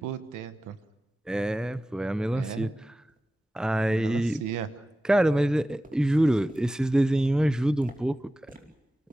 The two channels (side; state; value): both; normal; correlation 0.95